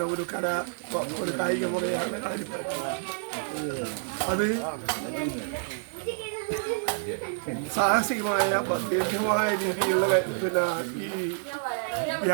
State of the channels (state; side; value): silent; left; digital silence